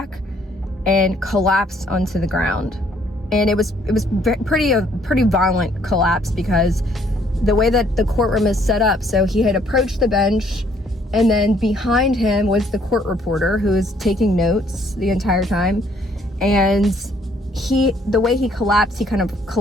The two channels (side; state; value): both; normal; correlation 0.64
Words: and collapsed onto the ground. And it was pretty violent collapse, because the way that the courtroom is set up, so he had approached the bench, and then behind him was the court reporter who was taking notes the entire time. And the way he collapsed, he kind of